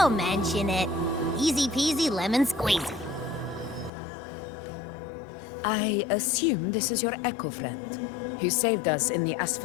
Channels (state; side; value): drops out; right; at 3.9 s